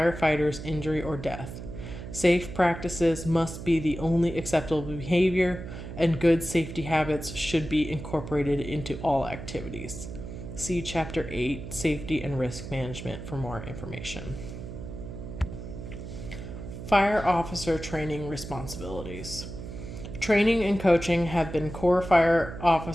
injury or death. Safe practices must be the only acceptable behavior, and good safety habits should be incorporated into all activities. See Chapter 8, Safety and Risk Management for more information. Fire officer training responsibilities. Training and coaching have been core fire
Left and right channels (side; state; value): right; noise; hum, 10 dB below the sound